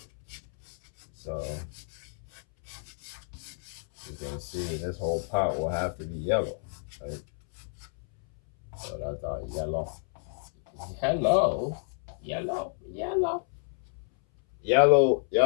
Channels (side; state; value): right; silent; 58 dB below the other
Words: so you can see this whole pot will have to be yellow, right? So that's our yellow. Hello, yellow.